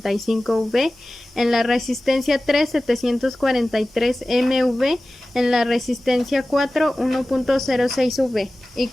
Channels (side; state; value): both; normal; correlation 0.96